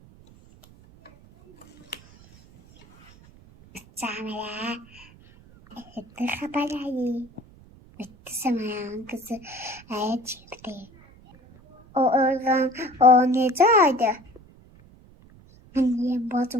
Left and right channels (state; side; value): noise; right; rumble, 25 dB below the sound